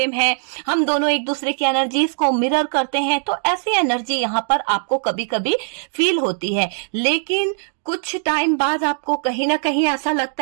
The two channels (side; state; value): left; silent; digital silence